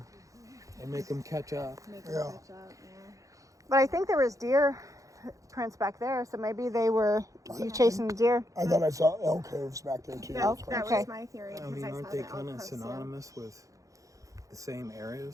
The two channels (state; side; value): late; left; 0.16 ms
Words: and make them catch up. Make them Yeah. catch up, yeah. But I think there was deer prints back there, so maybe they were you chasing the deer. I thought I saw elk hooves back there too. Elk? That's why. That Okay. was my theory. I 'cause mean, I aren't saw they the kind elk of hoofs, yeah. synonymous with the same